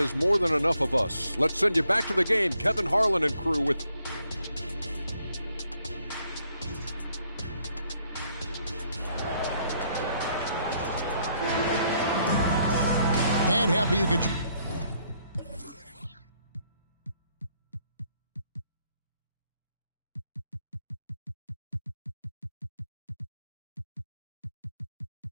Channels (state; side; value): inverted; both; correlation -0.71